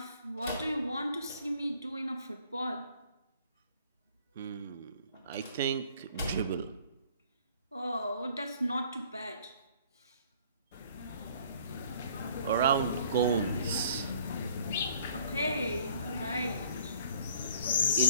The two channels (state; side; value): inverted; both; correlation -0.55